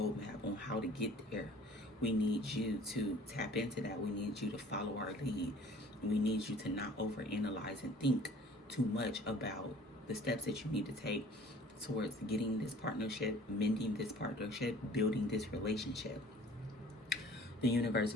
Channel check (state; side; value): normal; both; correlation 0.49